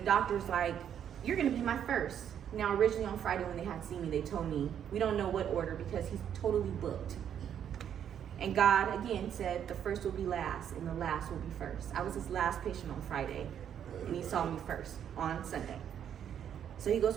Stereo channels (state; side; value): quieter; left; 9.1 dB